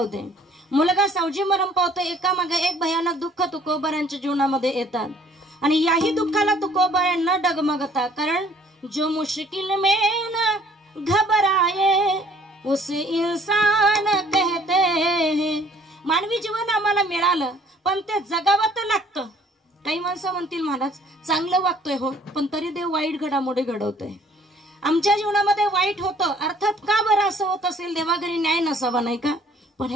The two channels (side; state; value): both; normal; correlation 0.57